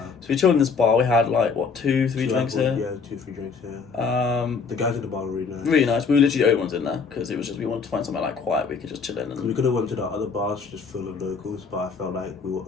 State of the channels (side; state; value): right; quieter; 5.2 dB